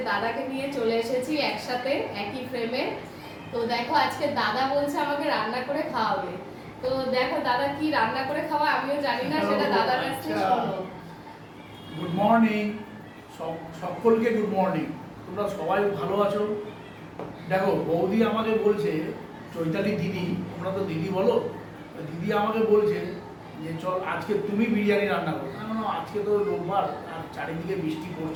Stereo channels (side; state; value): both; identical; correlation 1.00